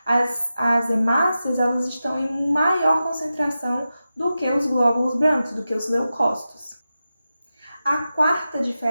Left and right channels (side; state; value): both; inverted; correlation -0.91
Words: As hemácias, elas estão em maior concentração do que os glóbulos brancos, do que os leucócitos. A quarta